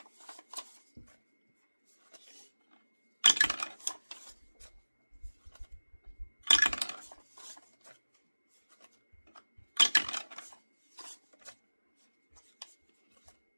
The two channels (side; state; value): both; inverted; correlation -1.00